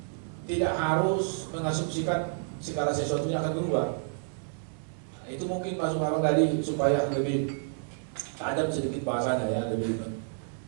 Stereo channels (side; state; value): left; silent; digital silence